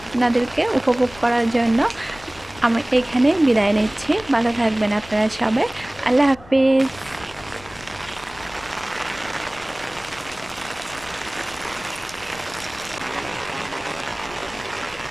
আপনাদেরকে উপভোগ করার জন্য আমি এখানে বিদায় নিচ্ছি। ভালো থাকবেন আপনারা সবাই। আল্লাহ হাফিজ।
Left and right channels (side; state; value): left; noise; rumble, 20 dB below the sound